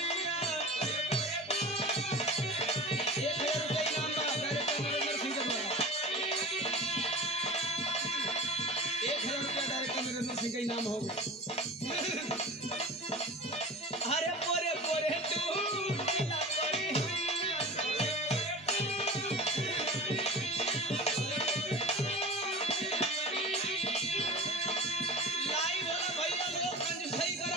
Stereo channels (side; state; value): both; normal; correlation 0.34